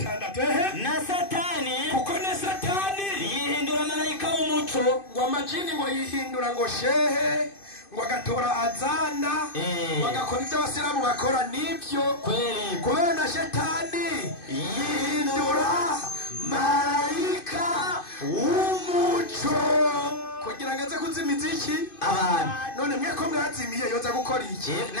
na satani kuko na satani yihindura marayika w'umuco ngo amajini ngo yihindura ngo shehe ngo agatora azana bagakora ibyo abasilamu bakora nibyo kweli kubera na shetani yihindura marayika w'umuco kugira ngo aze kuzimiza iki abantu none mwe ko mwazimiye yoza gukora iki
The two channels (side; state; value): right; late; 2.5 ms